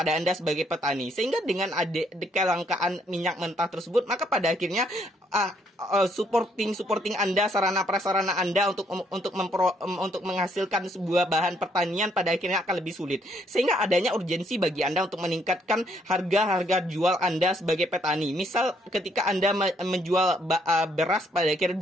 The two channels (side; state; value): both; normal; correlation 0.69